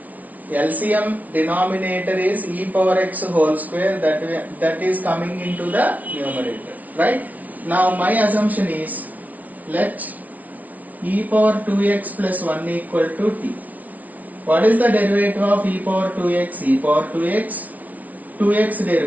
LCM denominator is e power x whole square, that is coming into the numerator, right? Now my assumption is let e power 2x plus 1 equal to t. What is the derivative of e power 2x? E power 2x, 2x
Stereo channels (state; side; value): late; left; 0.073 ms